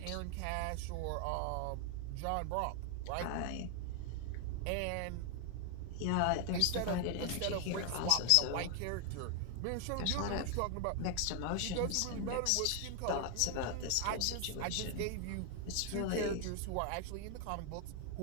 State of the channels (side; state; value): both; different; correlation 0.00